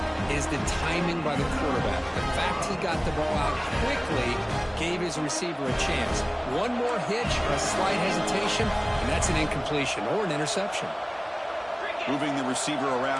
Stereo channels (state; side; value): identical; both; correlation 1.00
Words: is the timing by the quarterback. The fact he got the ball out quickly gave his receiver a chance. One more hitch or a slight hesitation, and that's an incompletion or an interception. Moving the receiver